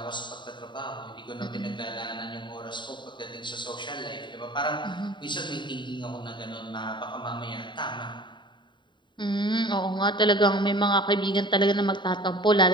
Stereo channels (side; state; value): right; late; 0.23 ms